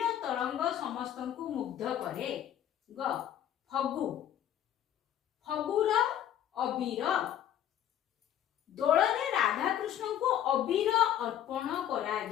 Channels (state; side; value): quieter; right; 10.7 dB